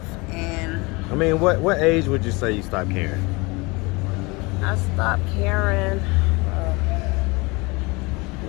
And I mean, what age would you say you stopped caring? I stopped caring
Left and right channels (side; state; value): right; quieter; 26.1 dB